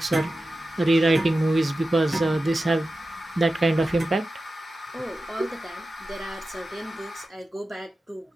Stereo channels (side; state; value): both; normal; correlation 0.93